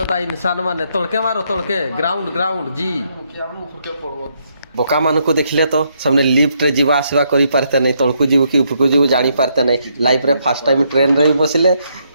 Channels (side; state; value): both; inverted; correlation -0.75